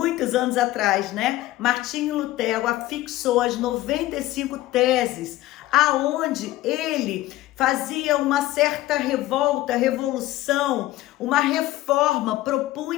anos atrás, né, Martinho Lutero afixou as 95 teses, aonde ele fazia uma certa revolta, revolução, uma reforma,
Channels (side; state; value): right; quieter; 16.2 dB